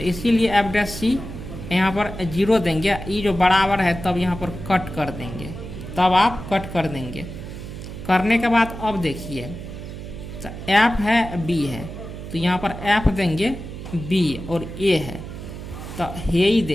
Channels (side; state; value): right; noise; hum, 10 dB below the sound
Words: इसीलिए एफ डैश सी यहाँ पर 0 देंगे, ये जो बराबर है तब यहाँ पर कट कर देंगे, तब आप कट कर देंगे। करने के बाद अब देखिए तो एफ है बी है, तो यहाँ पर एफ देंगे बी और ए है, तो हे ही